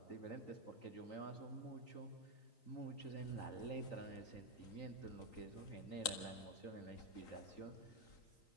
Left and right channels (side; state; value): right; late; 3.9 ms